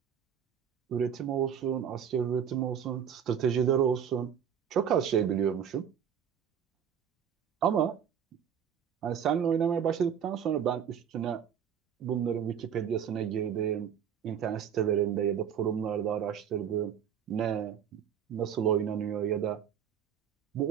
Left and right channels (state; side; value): quieter; left; 8.4 dB